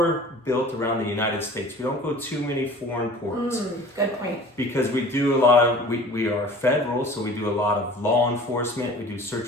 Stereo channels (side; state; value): both; normal; correlation 0.44